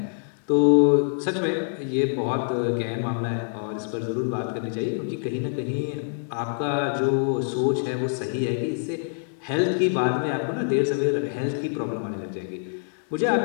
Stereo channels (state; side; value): silent; right; digital silence